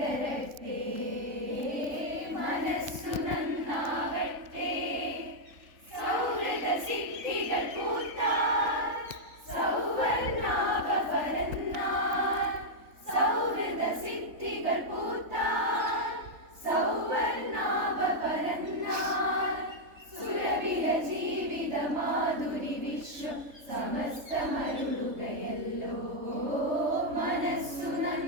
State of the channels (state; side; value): late; left; 3.7 ms